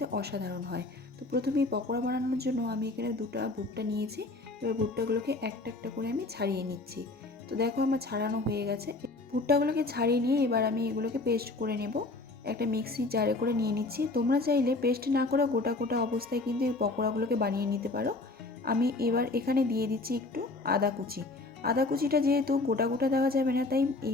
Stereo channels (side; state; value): right; quieter; 3.2 dB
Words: অসাধারণ হয়। তো প্রথমে এই পকোড়া বানানোর জন্য আমি এখানে দুটো ভুট্টা নিয়েছি। এবার ভুট্টাগুলোকে একটা একটা করে আমি ছাড়িয়ে নিচ্ছি। তো দেখো আমার ছাড়ানো হয়ে গেছে। ভুট্টাগুলোকে ছাড়িয়ে নিয়ে এবার আমি এগুলোকে পেস্ট করে নেব। একটা মিক্সি জারে করে নিয়ে নিচ্ছি। তোমরা চাইলে পেস্ট না করে গোটা গোটা অবস্থায় কিন্তু এই পকোড়াগুলোকে বানিয়ে নিতে পারো। আমি এবার এখানে দিয়ে দিচ্ছি একটু আদা কুচি। আদা কুচিটা যেহেতু গোটা গোটা দেওয়া যাবে না, তাই